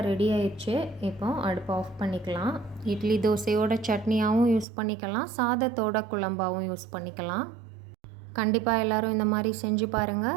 ரெடி ஆயிடுச்சு. இப்போ அடுப்பை ஆஃப் பண்ணிக்கலாம். இட்லி தோசையோட சட்னியாகவும் யூஸ் பண்ணிக்கலாம், சாதத்தோட குழம்பாகவும் யூஸ் பண்ணிக்கலாம். கண்டிப்பாக எல்லோரும் இந்த மாதிரி செஞ்சு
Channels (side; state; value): left; drops out; at 4.7 s